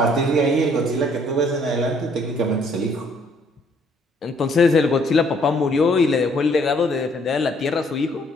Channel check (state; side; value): normal; both; correlation 0.64